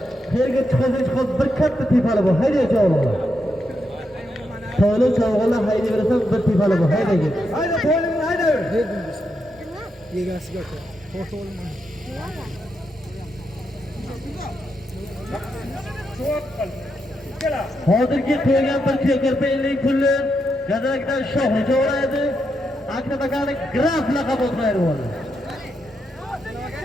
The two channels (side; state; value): both; normal; correlation 0.83